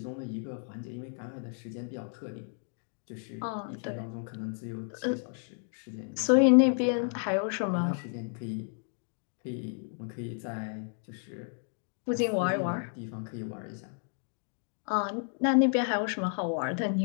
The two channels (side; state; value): right; silent; 56 dB below the other